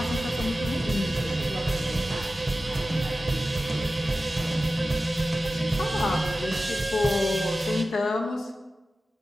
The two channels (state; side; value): normal; both; correlation 0.94